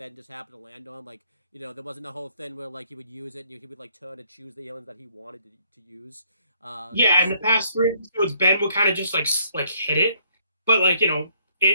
just happened to land on. Like there wasn't a whole thing where like he would use it and he would like turn and choose the aliens that he wanted to use. Yeah, in the past 3 episodes, Ben would kind of just like hit it, but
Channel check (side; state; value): both; inverted; correlation -0.67